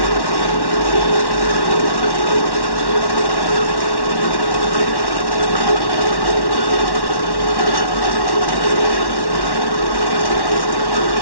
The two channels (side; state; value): right; late; 1.1 ms